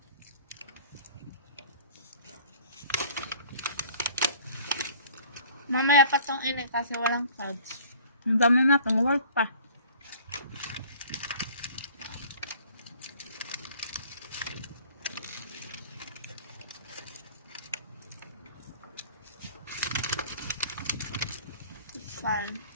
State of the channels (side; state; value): both; inverted; correlation -0.50